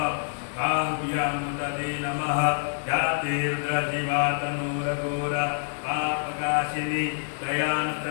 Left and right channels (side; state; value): right; silent; digital silence